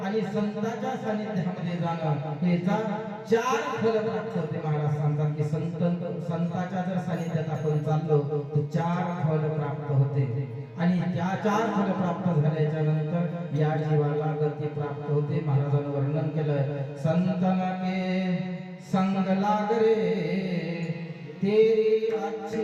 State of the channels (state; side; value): identical; both; correlation 1.00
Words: आणि संतांच्या सानिध्यामध्ये जाणं याचा 4 फल प्राप्त होते. महाराज सांगतात की संतांच्या जर सानिध्यात आपण चाललो तर 4 फल प्राप्त होते आणि त्या 4 फल प्राप्त झाल्याच्या नंतर या जीवाला गती प्राप्त होते. महाराजांनी वर्णन केलं, संतन के संग लाग रे तेरी